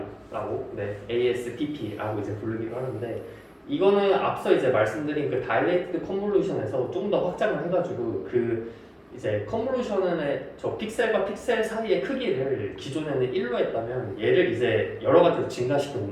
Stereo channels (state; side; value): identical; both; correlation 1.00